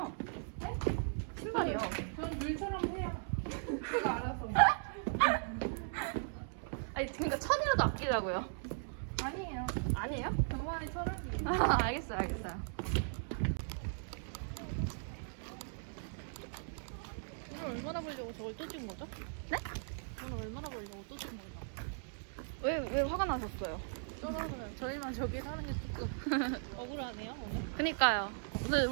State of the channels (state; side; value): silent; left; digital silence